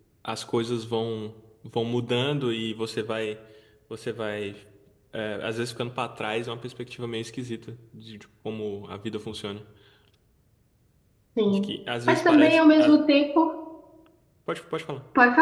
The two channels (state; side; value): identical; both; correlation 1.00